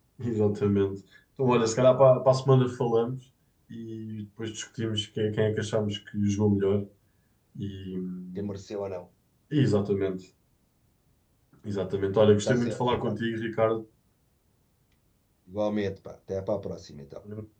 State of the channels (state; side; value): identical; both; correlation 1.00